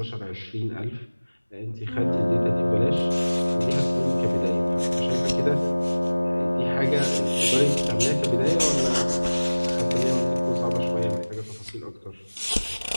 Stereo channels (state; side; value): inverted; both; correlation -1.00